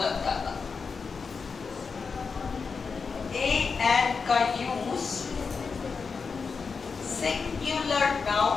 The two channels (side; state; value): right; quieter; 5.1 dB